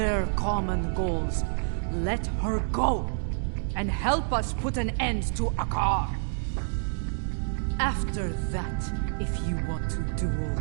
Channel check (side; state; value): left; silent; digital silence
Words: common goals. Let her go, and help us put an end to Akar. After that, if you want to duel